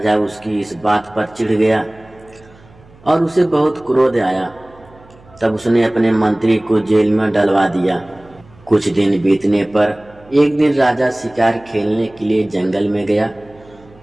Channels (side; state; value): right; noise; hum, 26 dB below the sound